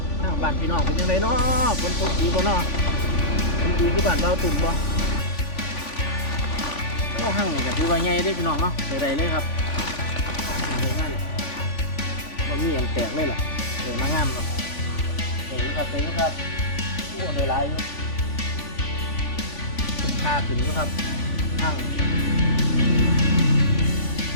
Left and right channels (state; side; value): late; right; 3.5 ms